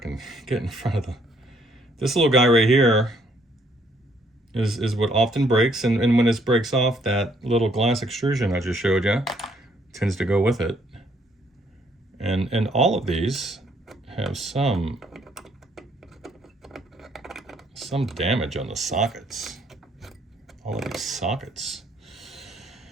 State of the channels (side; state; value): both; normal; correlation 0.67